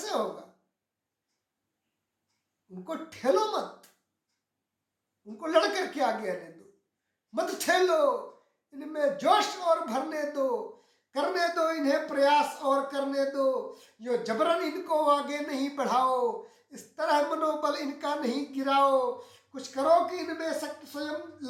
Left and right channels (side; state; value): both; identical; correlation 1.00